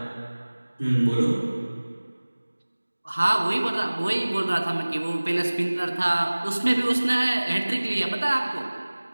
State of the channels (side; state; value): both; inverted; correlation -1.00